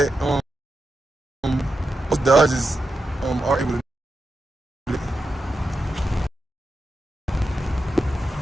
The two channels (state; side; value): normal; both; correlation 0.88